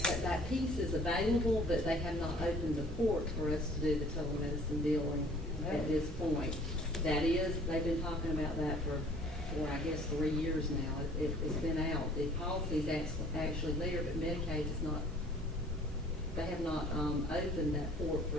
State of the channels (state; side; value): normal; both; correlation 0.54